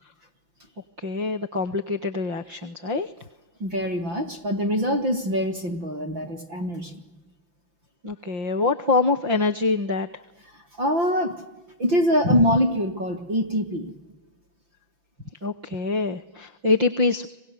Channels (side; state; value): left; late; 5.8 ms